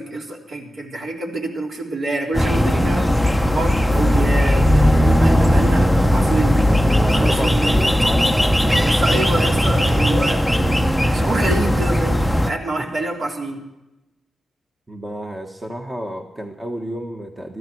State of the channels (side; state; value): both; normal; correlation 0.94